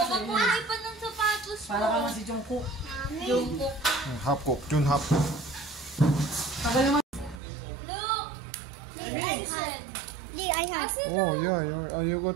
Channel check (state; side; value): drops out; left; at 7.4 s